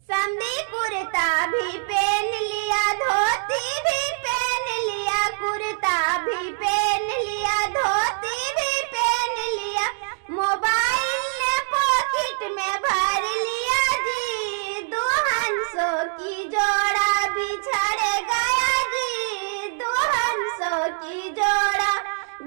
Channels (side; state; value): left; silent; digital silence